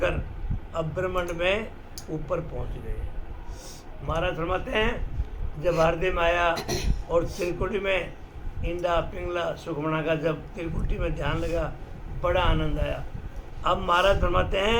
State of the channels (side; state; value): both; identical; correlation 1.00